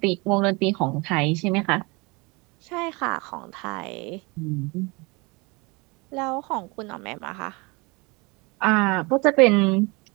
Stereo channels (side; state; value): left; quieter; 27.1 dB